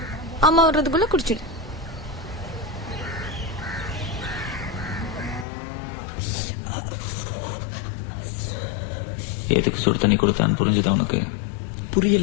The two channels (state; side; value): drops out; right; at 5.5 s